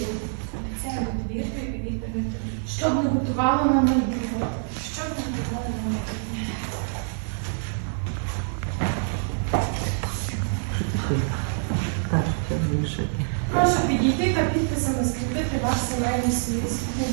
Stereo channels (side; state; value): left; silent; digital silence